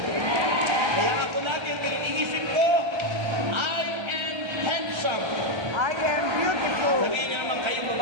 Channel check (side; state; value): left; late; 1.3 ms